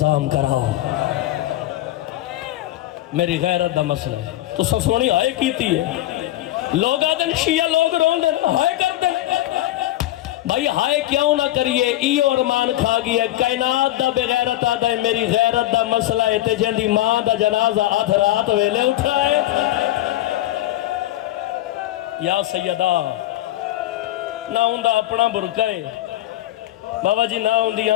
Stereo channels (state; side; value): quieter; right; 15.1 dB